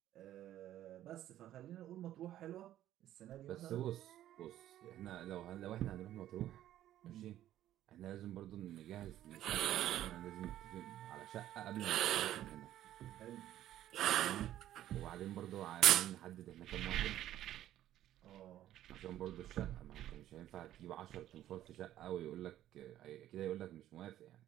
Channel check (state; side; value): quieter; left; 12.7 dB